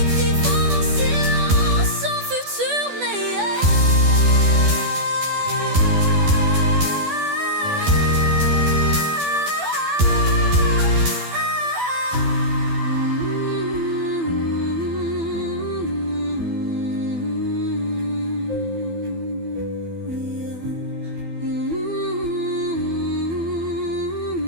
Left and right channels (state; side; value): late; left; 12 ms